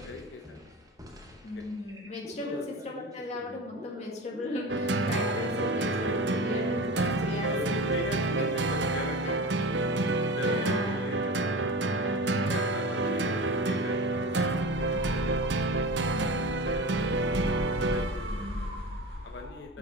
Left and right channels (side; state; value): both; normal; correlation 0.31